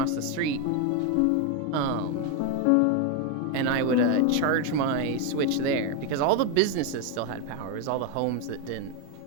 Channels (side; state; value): both; different; correlation 0.02